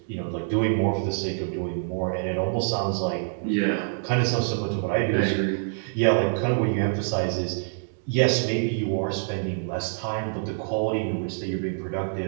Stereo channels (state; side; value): silent; left; digital silence